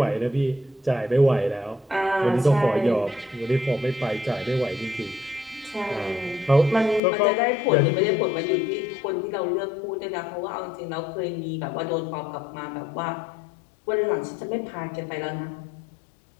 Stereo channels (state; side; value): drops out; right; at 7.0 s